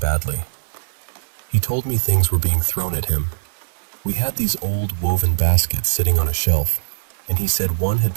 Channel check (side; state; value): left; silent; digital silence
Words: He told me things were being thrown at him. We had these old woven baskets sitting on a shelf, and he said one had